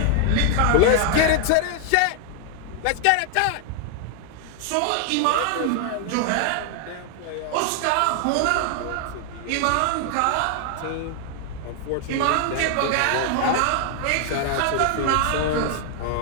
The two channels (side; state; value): both; different; correlation 0.00